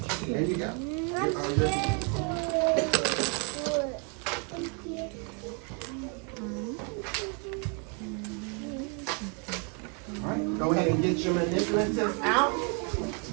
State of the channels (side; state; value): left; quieter; 37.0 dB